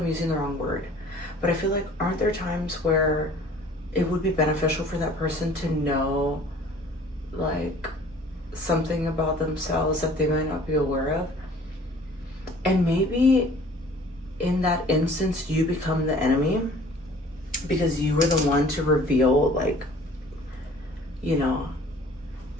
using the wrong word, but I feel like, aren't there times where it would be beneficial for that person to know like something about themselves that they might not be aware of? And maybe in that instance you become the enemy because you were the one to reveal, like, you know,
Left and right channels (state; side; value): normal; both; correlation 0.50